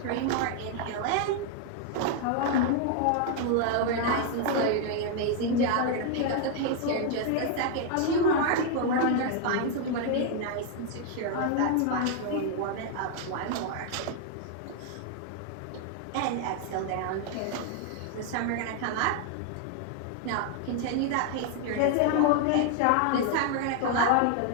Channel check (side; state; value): both; different; correlation 0.00